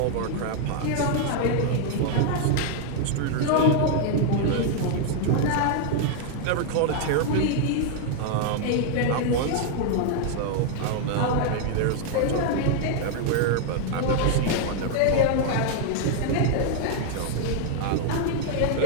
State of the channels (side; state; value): both; different; correlation 0.00